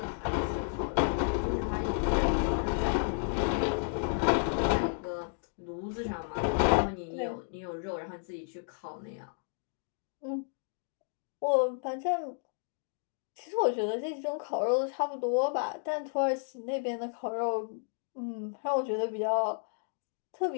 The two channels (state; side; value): silent; right; digital silence